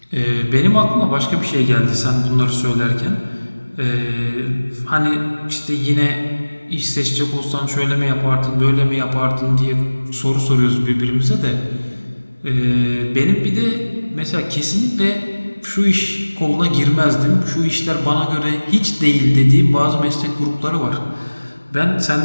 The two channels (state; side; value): inverted; both; correlation -1.00